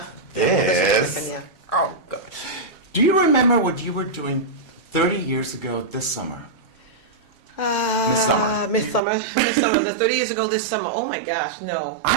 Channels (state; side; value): drops out; left; at 9.0 s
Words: this. Oh God. Do you remember what you were doing 30 years ago this summer? Miss Summer. The 30 years ago this summer. Oh my gosh, no.